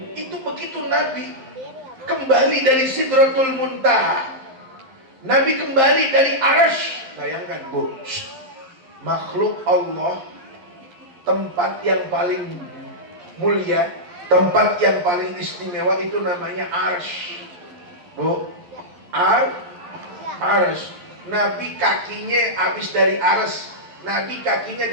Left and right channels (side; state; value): left; late; 11 ms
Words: Itu begitu Nabi kembali dari Sidratul Muntaha, Nabi kembali dari Arsy. Bayangkan Bu, makhluk Allah, tempat yang paling mulia, tempat yang paling istimewa itu namanya Arsy. Bu, Arsy. Nabi kakinya habis dari Arsy. Nabi kakinya